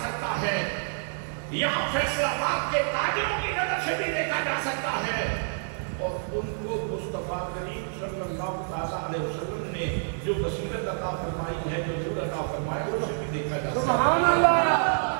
सकता है। यहाँ फैसलाबाद के ताजिरों की नजर से भी देखा जा सकता है। और उनको मुस्तफा करीम सल्लल्लाहु अलैहि वसल्लम ने जो बसीरत अता फरमाई है, जो नूर अता फरमाया, उससे भी देखा जा सकता है। सुभान अल्लाह,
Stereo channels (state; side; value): silent; left; digital silence